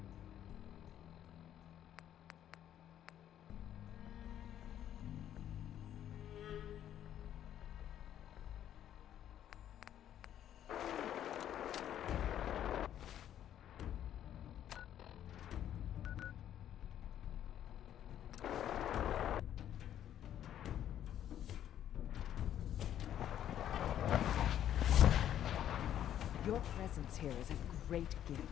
Your presence here is a great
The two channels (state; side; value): quieter; right; 10.8 dB